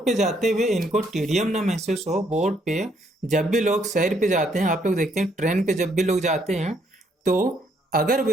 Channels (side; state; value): both; normal; correlation 0.70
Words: पे जाते हुए इनको टीडियम ना महसूस हो। बोट पे जब भी लोग सैर पे जाते हैं, आप लोग देखते हैं ट्रेन पे जब भी लोग जाते हैं, तो अगर